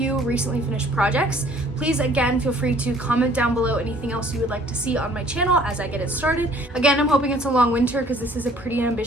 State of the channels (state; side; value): normal; both; correlation 0.56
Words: recently finished projects. Please, again, feel free to comment down below anything else you would like to see on my channel as I get it started. Again, I'm hoping it's a long winter because this is a pretty